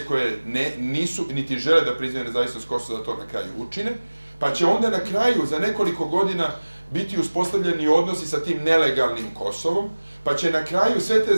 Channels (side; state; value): both; inverted; correlation -1.00